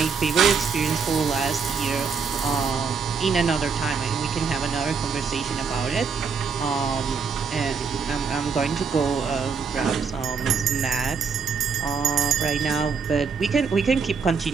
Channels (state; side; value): quieter; left; 5.6 dB